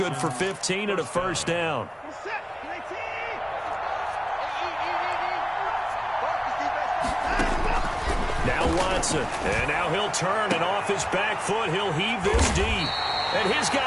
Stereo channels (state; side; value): identical; both; correlation 1.00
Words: for 15 and a first down. Now Watson, and now he'll turn, and off his back foot, he'll heave this deep. And his